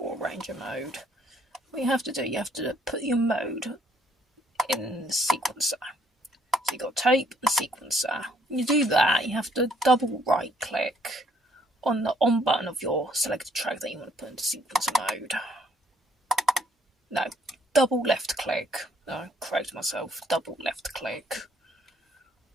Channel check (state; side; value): normal; both; correlation 0.65